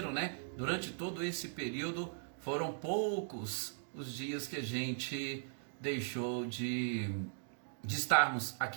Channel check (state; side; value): silent; left; digital silence